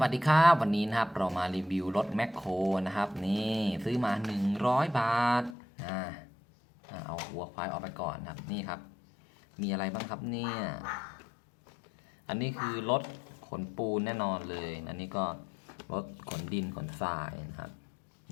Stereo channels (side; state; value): right; drops out; at 5.6 s